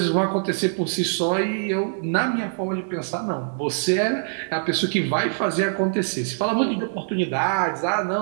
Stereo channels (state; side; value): silent; left; digital silence